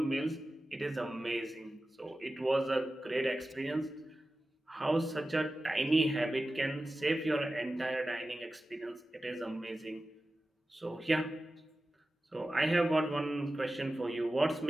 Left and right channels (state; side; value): normal; both; correlation 0.95